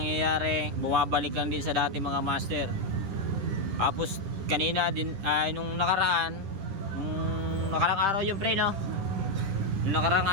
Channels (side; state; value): left; late; 10 ms